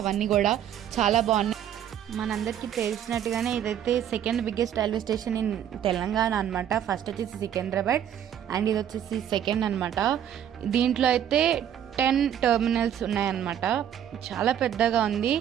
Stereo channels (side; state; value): left; quieter; 10.0 dB